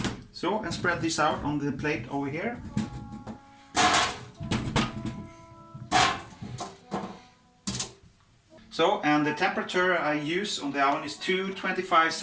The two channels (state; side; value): identical; both; correlation 1.00